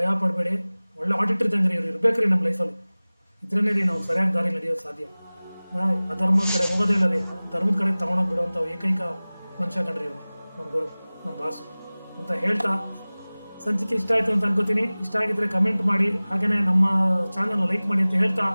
ಪಡಬೇಡಿ. ಒಳ್ಳೆ ಆಡಿಟರ್ ಇದ್ದಂಗ್ರಿ ಇವ್ರು ಇರ್ಬೇಕ್ರಿ ನಮ್ಮ ಲೈಫಲ್ಲಿ. ಇದ್ರೇ ರೀ ನಾವು ಸರಿಯಾಗಿ ದಾರಿ ನಡೆಯೋದು ಸಾಧ್ಯ. ಅಧರ್ಮದ ಕಡೆ ಹೋಗೋದೇ ಇಲ್ಲ ರೀ, ಧರ್ಮದ ಕಡೆ ತಗೊಂಡೋಗಿ ಬಿಡುವಂಥ ಏಕೈಕ ಮನುಷ್ಯ ಕಂಡ್ರಿ ಇವರು, ನಮ್ಮ ಗುರು, ನಮ್ಮ ಬಾಸು ಅಂತ ಹೇಳ್ತಾ, ಸಂಚಿಕೆ ಇಷ್ಟ ಆಯಿತು ಅಂತ ಅನ್ಕೋತೀನಿ. ಇಷ್ಟ ಆಗಿದ್ರೆ ಕಮೆಂಟ್ ಮಾಡಿ, ಹಾಗೆಯೇ ನಮ್ಮ ಚಾನಲ್ನ ಲೈಕ್ ಮಾಡಿ ಅಂತ ಹೇಳ್ತಾ,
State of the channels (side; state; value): both; inverted; correlation -0.99